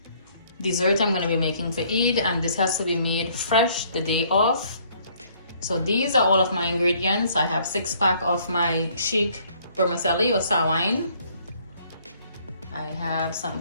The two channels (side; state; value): both; inverted; correlation -0.62